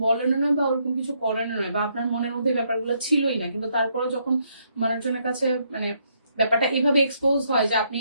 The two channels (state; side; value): inverted; both; correlation -0.73